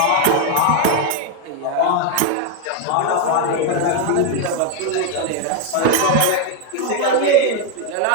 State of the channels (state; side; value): different; both; correlation 0.01